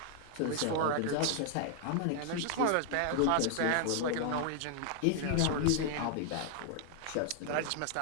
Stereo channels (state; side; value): different; both; correlation -0.01